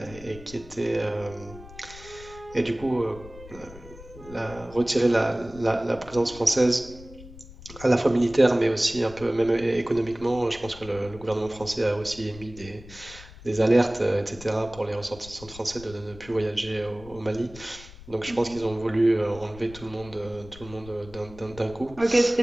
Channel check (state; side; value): noise; left; rumble, 18 dB below the sound